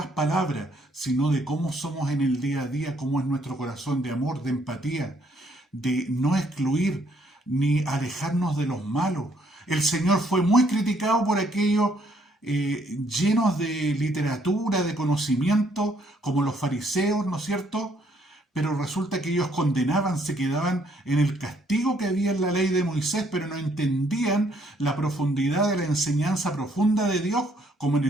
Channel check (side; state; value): both; normal; correlation 0.68